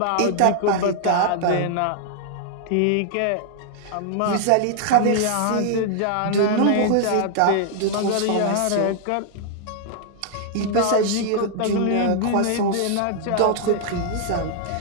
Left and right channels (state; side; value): different; both; correlation -0.01